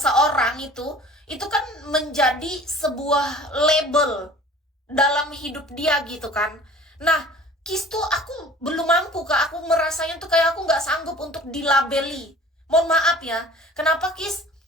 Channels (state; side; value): normal; both; correlation 0.46